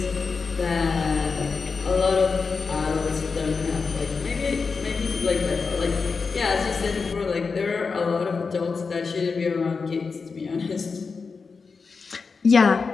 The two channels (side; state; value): right; quieter; 4.9 dB